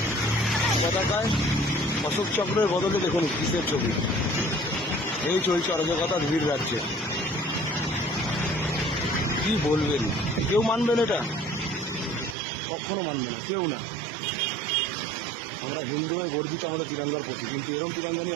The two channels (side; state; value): left; drops out; at 12.4 s